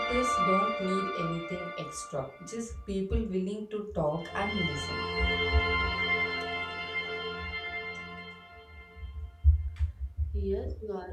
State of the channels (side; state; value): both; identical; correlation 1.00